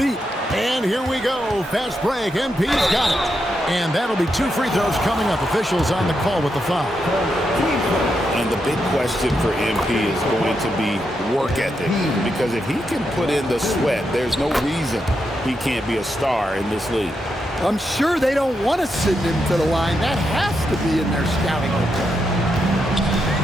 And here we go. Fast break. MP's got it. And that'll be 2 free throws coming up. Officials on the call with the foul. And the big question for MP is going to be work ethic. Because if he can put in the sweat, there's no reason he can't be a star in this league. I'm sure they don't want to send him to the line. That has to be in their scouting report.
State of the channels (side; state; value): both; normal; correlation 0.84